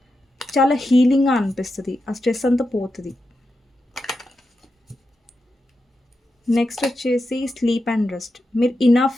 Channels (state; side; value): normal; both; correlation 0.88